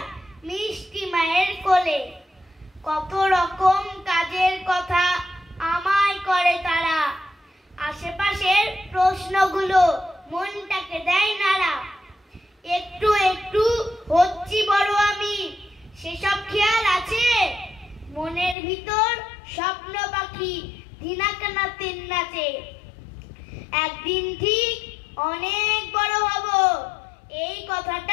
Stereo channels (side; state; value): right; drops out; at 18.6 s